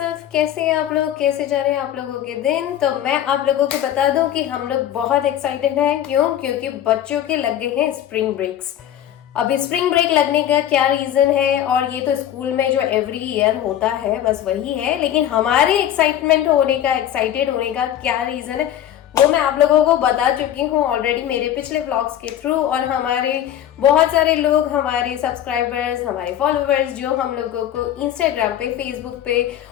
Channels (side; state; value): right; quieter; 11.2 dB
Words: कैसे हैं आप लोग, कैसे जा रहे हैं आप लोगों के दिन? तो मैं आप लोगों को बता दूं कि हम लोग बहुत एक्साइटेड हैं। क्यों? क्योंकि बच्चों के लग गए हैं स्प्रिंग ब्रेक्स। अभी स्प्रिंग ब्रेक लगने का क्या रीजन है, और ये तो स्कूल में जो एवरी ईयर होता है बस वही है, लेकिन हमारे एक्साइटेड होने का क्या रीजन है वो मैं आप लोगों को बता चुकी हूँ ऑलरेडी मेरे पिछले व्लॉग्स के थ्रू। और हमारे बहुत सारे लोग, हमारे सब्सक्राइबर्स, हमारे फॉलोअर्स जो हम लोगों को इंस्टाग्राम पे, फेसबुक पे